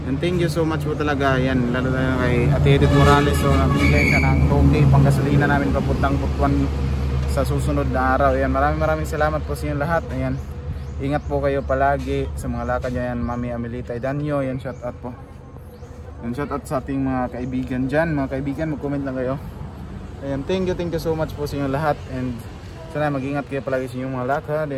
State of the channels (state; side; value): identical; both; correlation 1.00